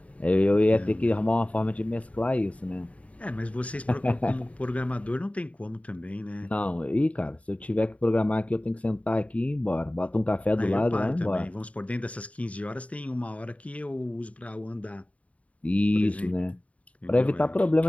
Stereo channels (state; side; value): late; right; 0.067 ms